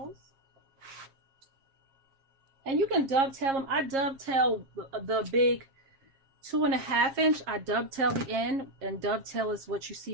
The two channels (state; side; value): late; left; 7.4 ms